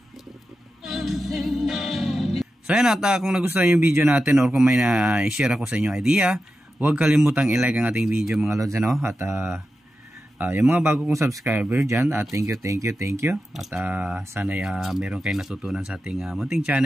So ayan at kung nagustuhan yung video natin or kung may na-share ako sa inyong idea, huwag kalimutang i-like ang ating video mga lods ano. At yung mga bago kong subscriber dyan, thank you. At sana meron kayong natutunan sa ating munting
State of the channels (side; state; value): both; normal; correlation 0.91